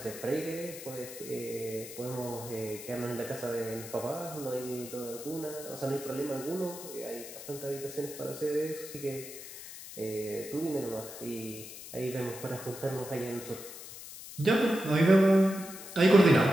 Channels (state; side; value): noise; left; hiss, 13 dB below the sound